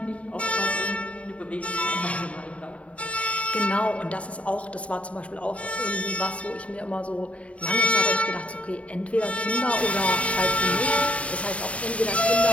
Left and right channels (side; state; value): right; late; 0.064 ms